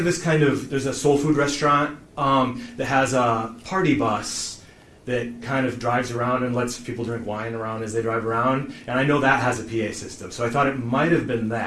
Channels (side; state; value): both; identical; correlation 1.00